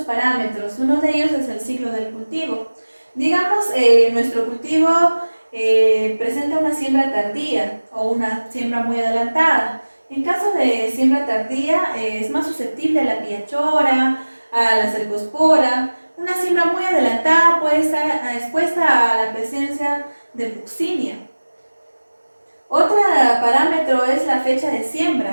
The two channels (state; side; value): inverted; both; correlation -1.00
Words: parámetros. Uno de ellos es el ciclo del cultivo. Digamos, nuestro cultivo presenta una siembra tardía o una siembra muy adelantada. En caso de siembra tardía, es más susceptible a la piachora, a la cercospora. Una siembra muy adelantada puede estar expuesta a la presencia de buxinia. Otro parámetro es la fecha de